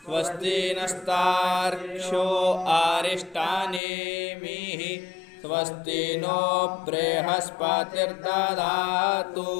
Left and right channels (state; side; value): drops out; right; at 3.8 s